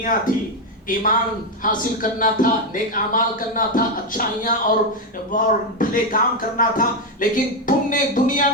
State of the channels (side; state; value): both; normal; correlation 0.07